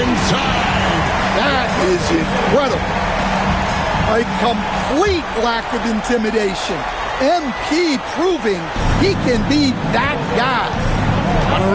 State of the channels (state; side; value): identical; both; correlation 1.00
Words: inside. That is incredible. A complete lack of intimidation. MP proving he can be that guy. On